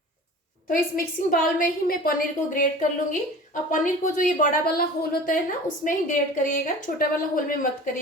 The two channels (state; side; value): normal; both; correlation 0.40